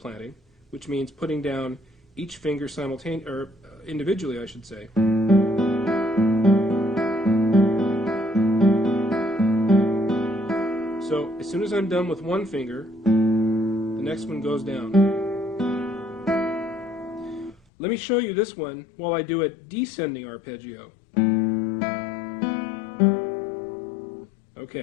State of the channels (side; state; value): right; drops out; at 17.6 s